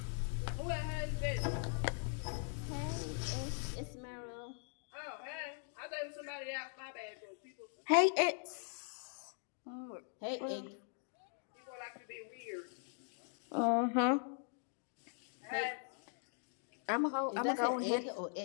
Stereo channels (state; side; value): silent; right; 51 dB below the other